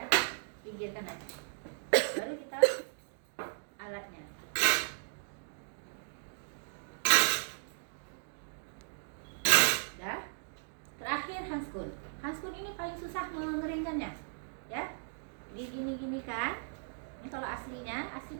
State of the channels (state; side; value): silent; left; digital silence